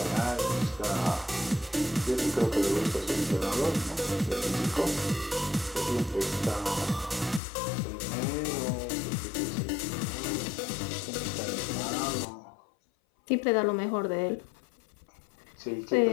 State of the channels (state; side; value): drops out; right; at 7.4 s